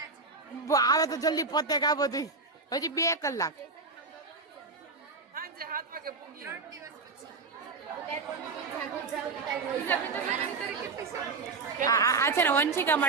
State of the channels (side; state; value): left; quieter; 4.2 dB